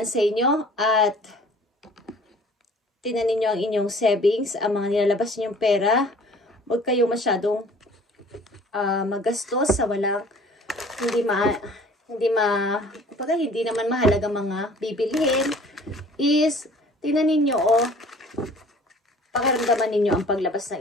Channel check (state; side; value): normal; both; correlation 0.50